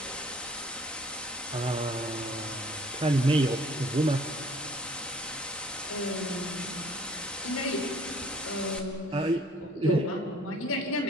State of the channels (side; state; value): both; normal; correlation 0.55